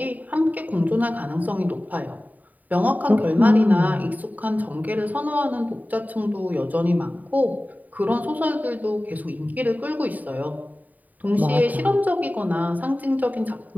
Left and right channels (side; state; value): left; late; 0.078 ms